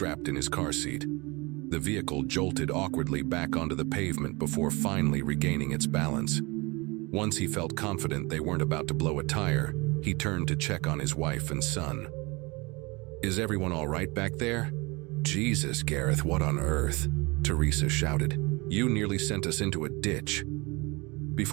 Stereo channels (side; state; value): left; quieter; 25.9 dB